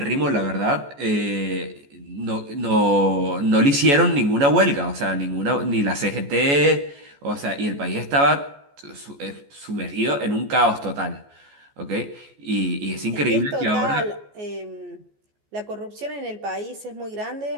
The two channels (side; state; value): left; late; 14 ms